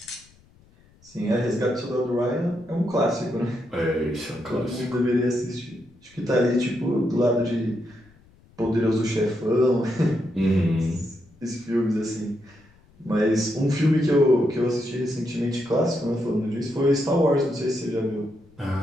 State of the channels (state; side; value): noise; left; rumble, 29 dB below the sound